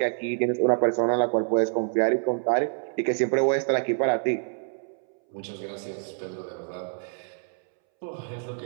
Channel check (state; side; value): silent; left; 60 dB below the other